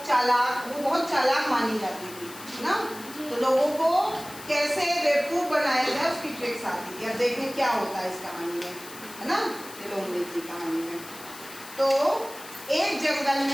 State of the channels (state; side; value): noise; left; hiss, 15 dB below the sound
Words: चालाक, वो बहुत चालाक मानी जाती थी ना, तो लोगों को कैसे बेवकूफ बनाया जाए उसकी ट्रिक्स आती थी। अब देखें क्या होता है इस कहानी में, है ना, ये लोमड़ी की कहानी में। तो एक जंगल